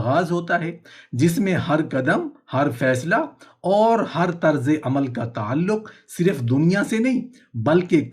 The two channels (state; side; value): identical; both; correlation 1.00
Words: होता है जिसमें हर कदम, हर फैसला और हर तर्ज अमल का ताल्लुक सिर्फ दुनिया से नहीं बल्कि